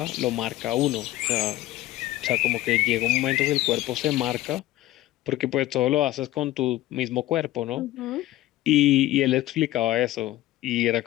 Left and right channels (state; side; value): quieter; right; 15.9 dB